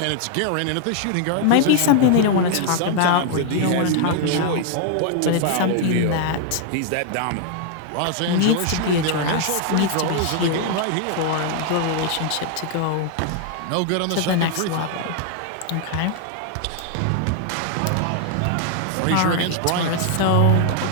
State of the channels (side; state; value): both; different; correlation 0.00